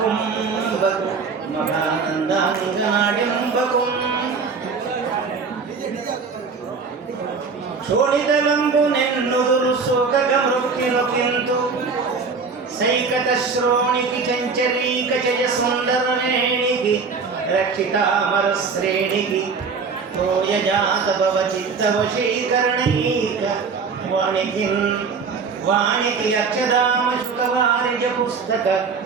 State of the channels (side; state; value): left; quieter; 5.0 dB